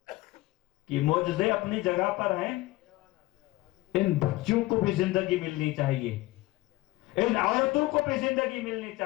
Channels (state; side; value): quieter; right; 19.2 dB